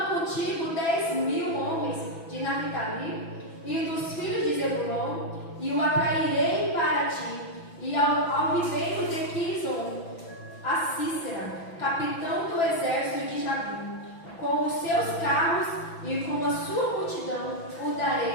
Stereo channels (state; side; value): late; right; 6.0 ms